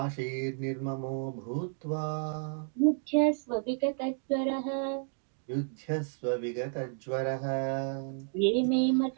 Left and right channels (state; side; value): silent; left; 57 dB below the other